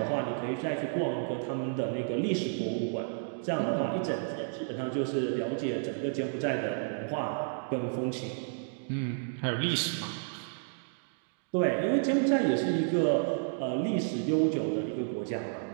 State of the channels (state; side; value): silent; left; digital silence